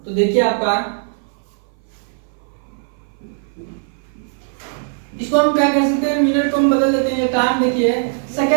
तो देखिए आपका इसको हम क्या कर सकते हैं, मिनट को हम बदल देते हैं, टाइम देखिए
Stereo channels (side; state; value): left; silent; 59 dB below the other